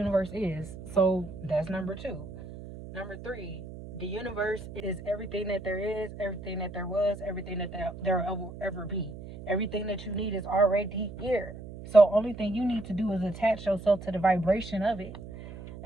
is. So that's number two. Number three, the universe is everything that there is, everything that there was, everything that there will ever be. Everything that you need is already here. So only thing you need to do is attach yourself to the vibration of it.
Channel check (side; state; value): right; noise; hum, 13 dB below the sound